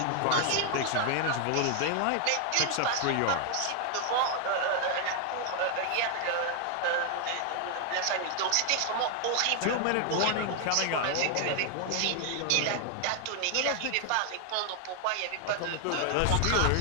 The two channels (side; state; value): both; different; correlation 0.00